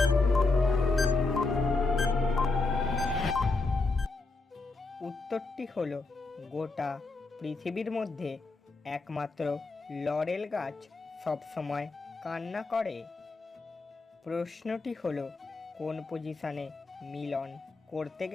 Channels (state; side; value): quieter; right; 3.5 dB